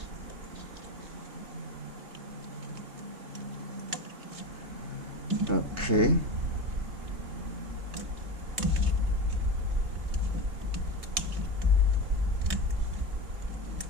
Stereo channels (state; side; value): late; left; 3.2 ms